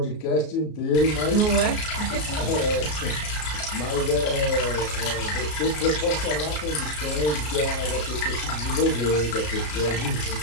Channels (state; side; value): late; right; 33 ms